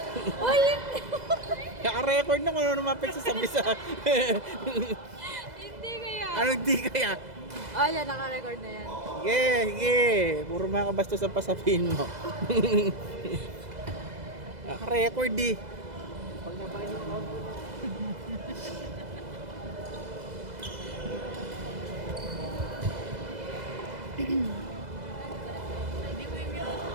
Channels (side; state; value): left; late; 2.0 ms